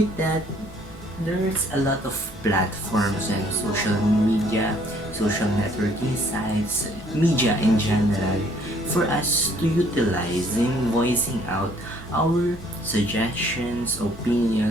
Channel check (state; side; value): normal; both; correlation 0.62